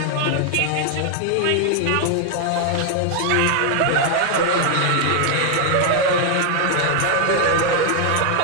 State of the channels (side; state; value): both; different; correlation 0.00